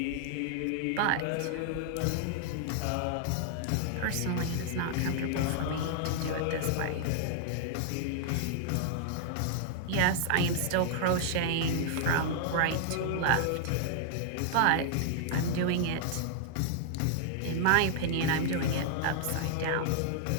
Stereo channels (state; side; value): different; both; correlation -0.01